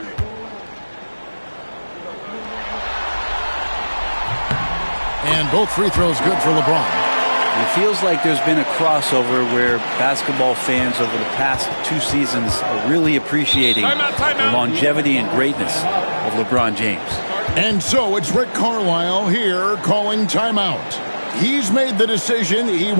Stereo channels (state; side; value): inverted; both; correlation -1.00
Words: And both free throws good for LeBron. It feels like there's been a crossover where basketball fans over the past 2 seasons are really appreciating the longevity and greatness of LeBron James. And so it's Rick Carlisle here calling timeout. He's made the decision. He